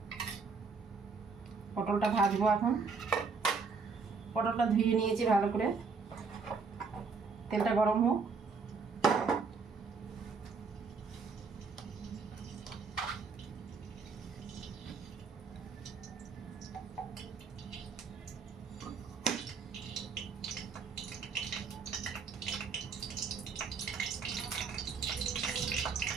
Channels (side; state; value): left; quieter; 4.9 dB